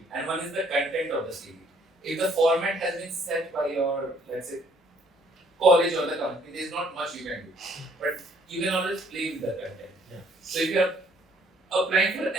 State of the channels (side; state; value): both; normal; correlation 0.63